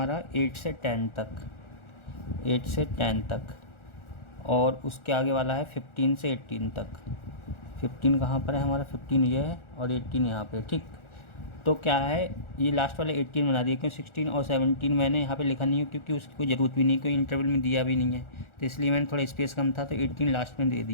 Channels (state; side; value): late; right; 1.4 ms